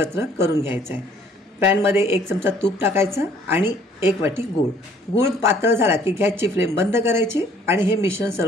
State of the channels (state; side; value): normal; both; correlation 0.59